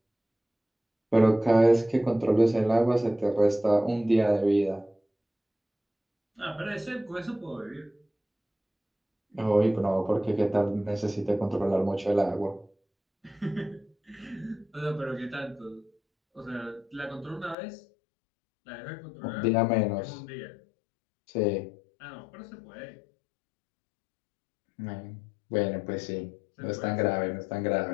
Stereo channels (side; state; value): right; drops out; at 17.6 s